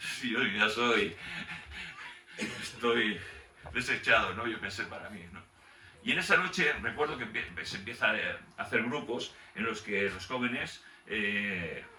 yo ya estoy desechado, ¿no? Yo pensé para mí, ¿no? Y en esa noche recuerdo que se empieza a hacer grupos en los que los jóvenes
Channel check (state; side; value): identical; both; correlation 1.00